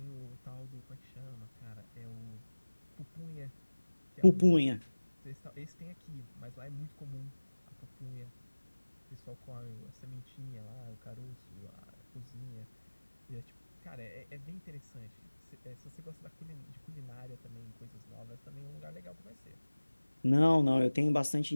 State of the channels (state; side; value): inverted; both; correlation -1.00